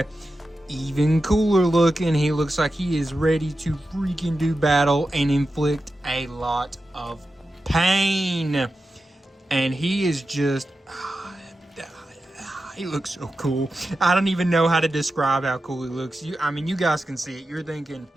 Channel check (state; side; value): normal; both; correlation 0.91